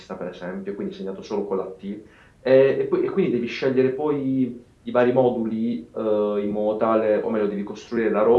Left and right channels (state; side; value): identical; both; correlation 1.00